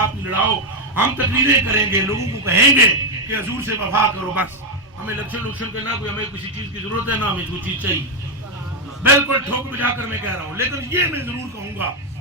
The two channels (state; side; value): noise; left; hum, 30 dB below the sound